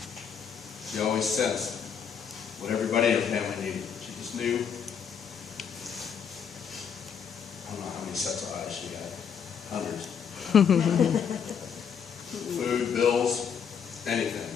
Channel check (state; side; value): quieter; right; 7.3 dB